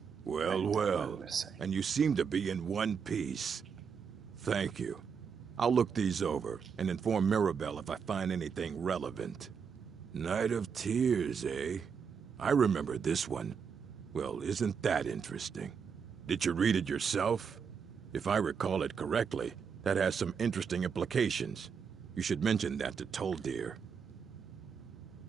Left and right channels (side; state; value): left; quieter; 6.4 dB